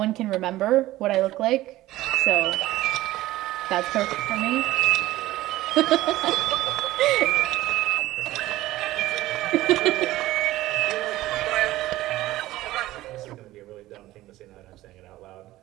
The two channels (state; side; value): quieter; left; 16.4 dB